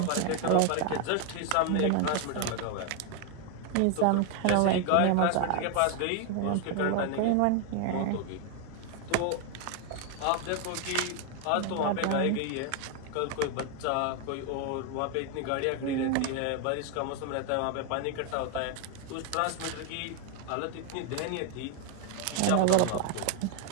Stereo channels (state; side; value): different; both; correlation 0.01